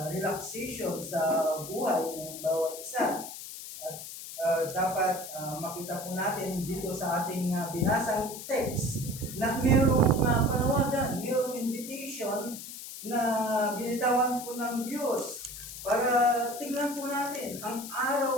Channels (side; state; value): left; noise; hiss, 11 dB below the sound